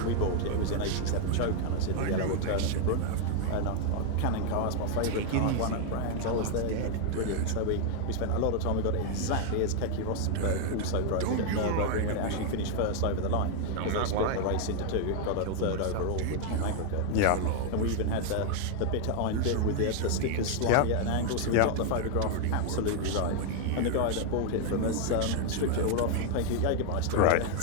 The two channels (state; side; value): different; both; correlation 0.00